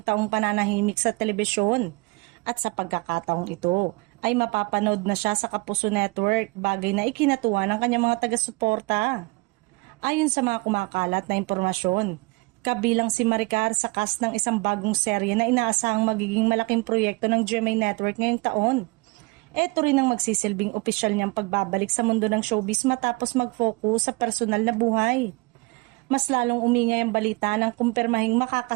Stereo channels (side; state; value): left; quieter; 26.3 dB